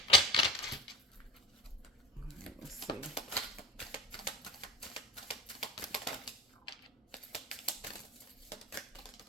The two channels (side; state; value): both; normal; correlation 0.32